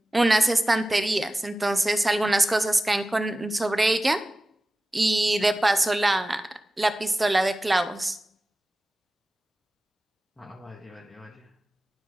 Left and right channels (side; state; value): both; normal; correlation 0.96